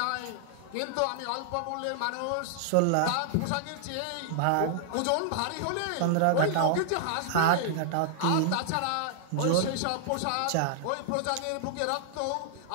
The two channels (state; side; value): different; both; correlation -0.01